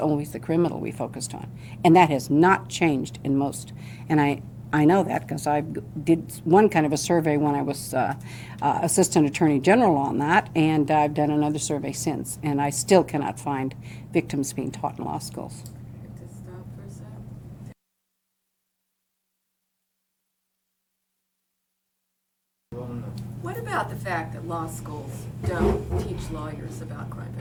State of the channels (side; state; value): both; identical; correlation 1.00